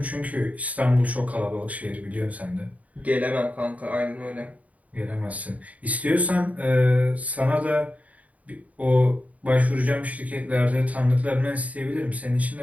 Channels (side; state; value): left; late; 0.070 ms